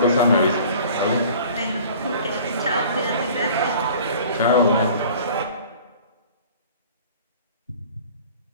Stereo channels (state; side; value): inverted; both; correlation -0.46